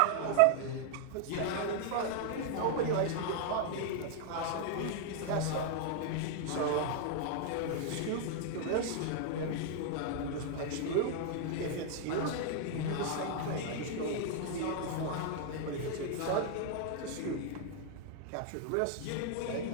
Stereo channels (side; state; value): both; different; correlation 0.00